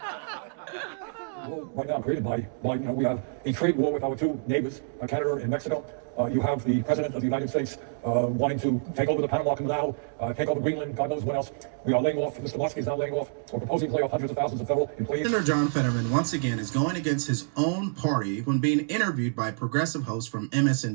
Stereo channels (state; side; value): silent; left; digital silence